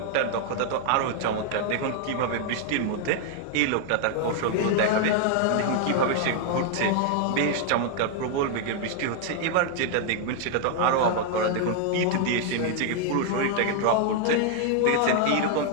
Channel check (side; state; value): both; different; correlation 0.00